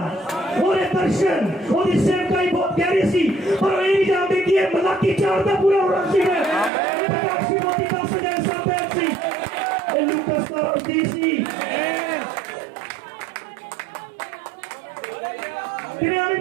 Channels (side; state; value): left; drops out; at 6.7 s